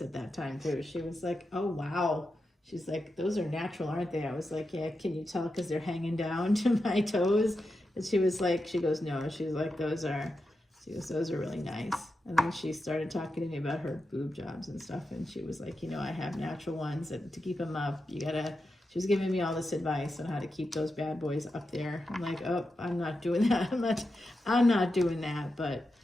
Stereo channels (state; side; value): normal; both; correlation 0.89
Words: at that time too. She was like, oh, wow. She's like, those are natural, aren't they? I was like, yeah, can you tell because they're hanging down to my toes? And she was like, she goes, no. She's like, those are really nice. And then she started talking to me about her boob jobs and stuff. And she was like, you know, I have natural ones, and to keep them up, she was giving me all this advice on how to keep those bad boys up there. I'm like, oh, I'm not doing that. I'm not doing that. But